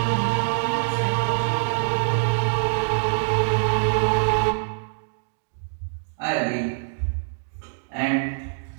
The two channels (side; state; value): left; silent; 62 dB below the other